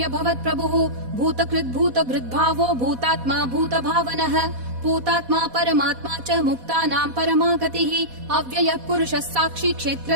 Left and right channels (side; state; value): left; late; 4.1 ms